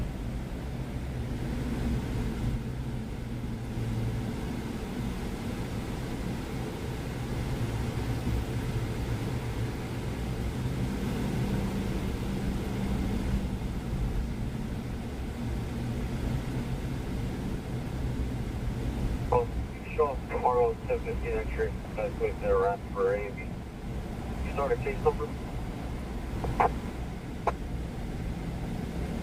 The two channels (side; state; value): both; identical; correlation 1.00